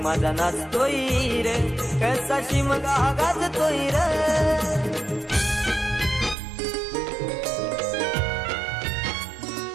माझा नाचतोय र, कसा शिमगा गाजतोय र।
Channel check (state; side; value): drops out; left; at 6.4 s